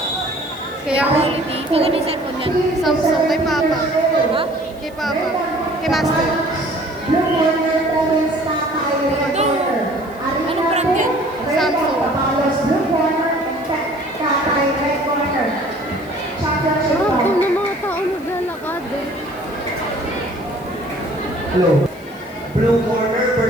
Kaya quality. Kung ano yung cellphone yan? Samsung kay Papa. Ha? Kay Papa. Kay Master. Blue Corner Province Tatay Recorder. Ano brand yan? Samsung. Papalos Blue Corner Tatay Recorder. Championship Ah, bout. kung ng mga tao naglalakad. Hello. Blue corner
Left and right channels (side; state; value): left; noise; hiss, 26 dB below the sound